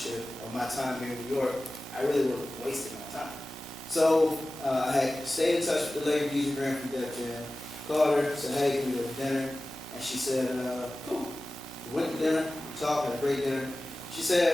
or my time here in New York, I really would have wasted my time. So I had stayed in touch with the lady DJ Grant from Def Jam, called her, said, hey, can we go to dinner? And she said, cool. We went to dinner, we talked, had a great dinner. She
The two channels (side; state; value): both; normal; correlation 0.96